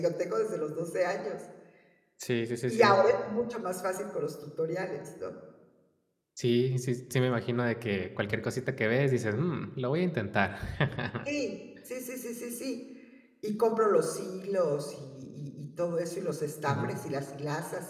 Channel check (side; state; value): both; identical; correlation 1.00